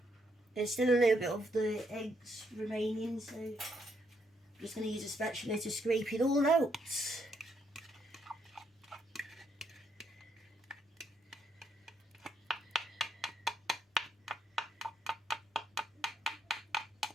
There's still a little bit of the eggs remaining, so I'm just going to use a spatula to scrape it all out.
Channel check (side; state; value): both; normal; correlation 0.75